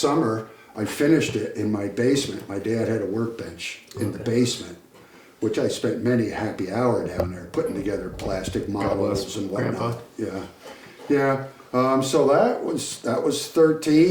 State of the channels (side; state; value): both; identical; correlation 1.00